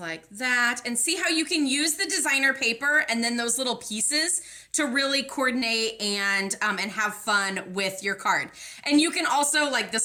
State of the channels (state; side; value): identical; both; correlation 1.00